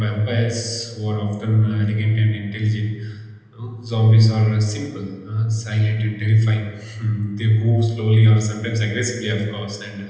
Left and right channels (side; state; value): both; identical; correlation 1.00